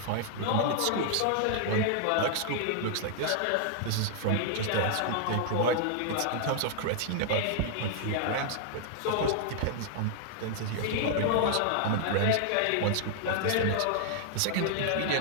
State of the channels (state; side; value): different; both; correlation -0.01